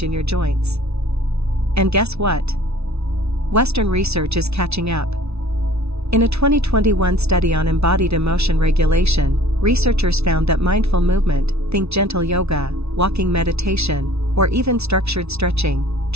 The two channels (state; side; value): late; left; 0.80 ms